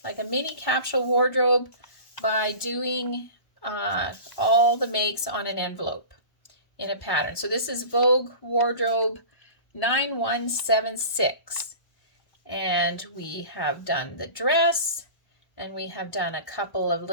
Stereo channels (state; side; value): late; right; 1.0 ms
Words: like a mini capsule wardrobe by doing all the makes on an envelope in a pattern. So this is Vogue Wardrobe 9176, and we have done the dress and we have done a couple of